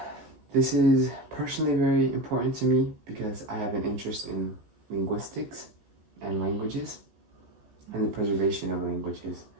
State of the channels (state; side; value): late; left; 14 ms